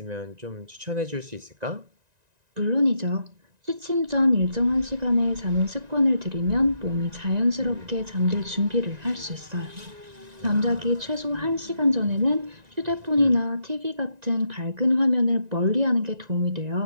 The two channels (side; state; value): left; late; 1.9 ms